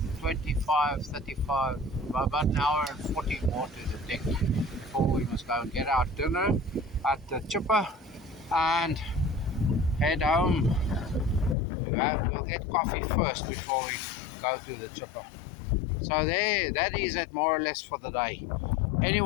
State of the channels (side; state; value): right; drops out; at 11.6 s